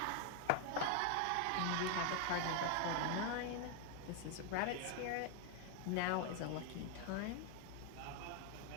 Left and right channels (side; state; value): both; different; correlation 0.01